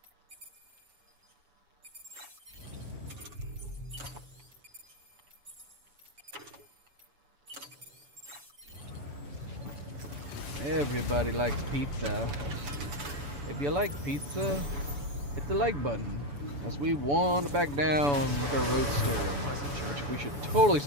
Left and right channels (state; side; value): late; left; 7.0 ms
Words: Everybody likes pizza. If you like pizza, hit the like button, as we wander back down with our roadster, which we should totally